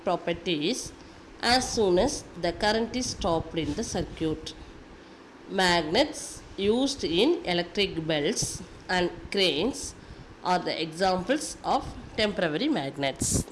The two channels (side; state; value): both; identical; correlation 1.00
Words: properties as soon as the current is stopped in the circuit. Magnets used in electric belts and cranes are the examples of temporary magnets.